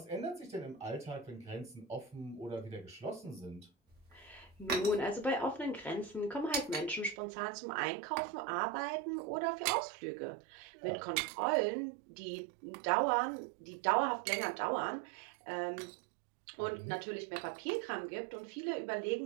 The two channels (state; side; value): drops out; left; at 7.2 s